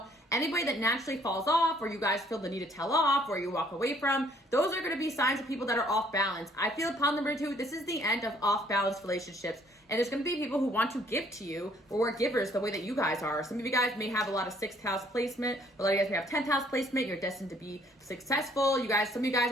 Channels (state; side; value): normal; both; correlation 0.62